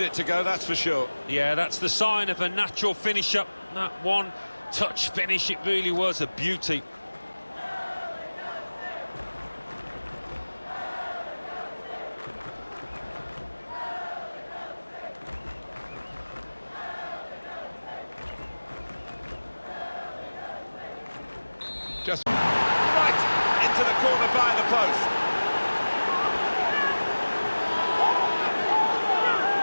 it to go, that's for sure. Yeah, that's the sign of a natural finish-up. That one-touch finish, it really was a beauty. Just right into the corner by the post.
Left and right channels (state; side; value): inverted; both; correlation -1.00